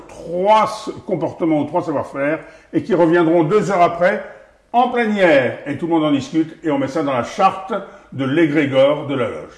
3 comportements ou 3 savoir-faire, et qui reviendront 2 heures après, en plénière, et tout le monde en discute, et on met ça dans la charte de l'égrégore de la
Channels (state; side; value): identical; both; correlation 1.00